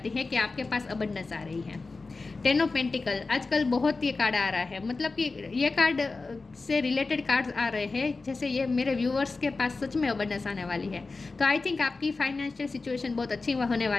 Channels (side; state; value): right; quieter; 3.8 dB